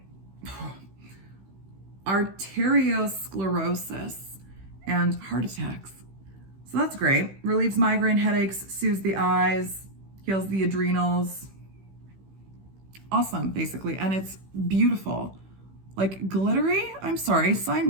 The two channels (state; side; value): late; left; 16 ms